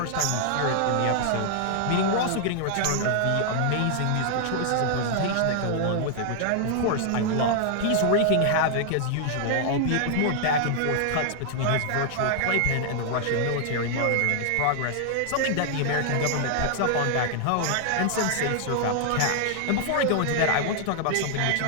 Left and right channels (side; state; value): both; different; correlation -0.01